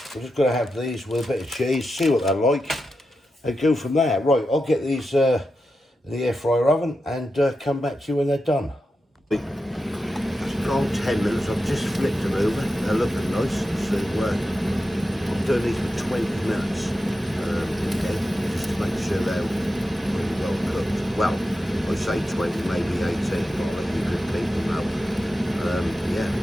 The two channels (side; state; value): both; normal; correlation 0.90